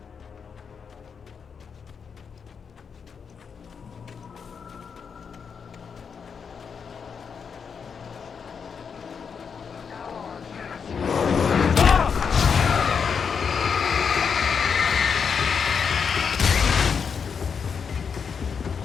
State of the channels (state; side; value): quieter; right; 6.3 dB